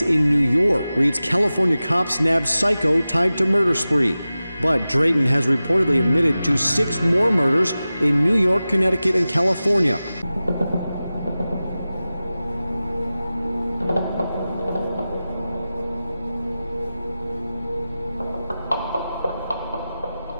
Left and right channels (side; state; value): both; inverted; correlation -0.95